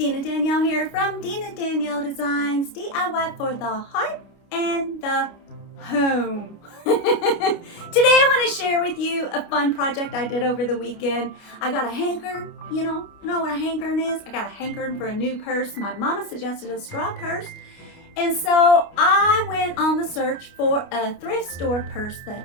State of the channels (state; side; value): late; right; 29 ms